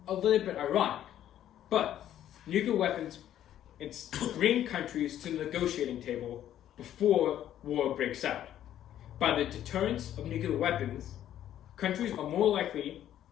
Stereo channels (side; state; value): right; quieter; 11.4 dB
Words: A little bit ironic, but nuclear weapons bring countries to the negotiating table before war breaks out. By the deterrence of nuclear weapons, countries are more likely